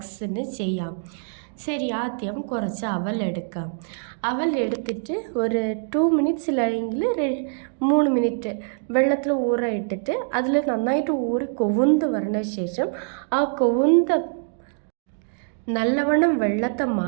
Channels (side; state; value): left; silent; digital silence